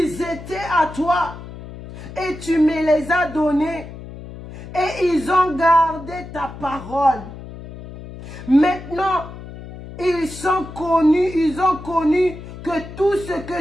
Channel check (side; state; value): left; noise; hum, 13 dB below the sound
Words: étaient à toi et tu me les as donnés et ils ont gardé ta parole. Maintenant, ils ont connu que tout ce